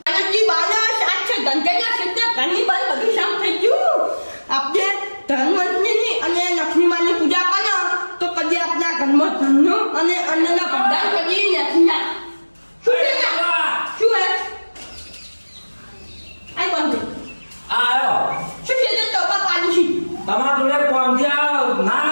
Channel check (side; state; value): both; inverted; correlation -1.00